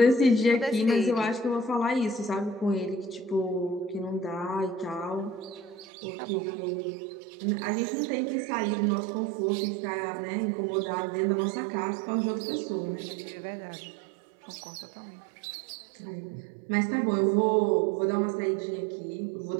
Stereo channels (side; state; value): left; drops out; at 5.9 s